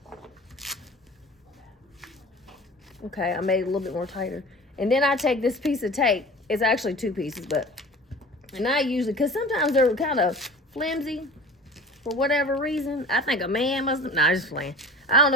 Okay, I made it a little bit more tighter. And then I take this piece of tape. It's actually 2 pieces, but... And I usually... Because sometimes they're kind of flimsy. For whatever reason. I think a man must have... Nah, just playing. I don't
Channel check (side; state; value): both; normal; correlation 0.40